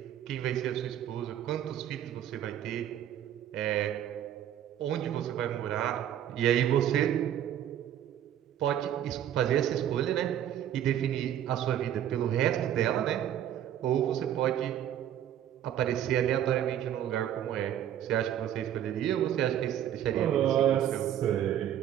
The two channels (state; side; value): quieter; left; 10.7 dB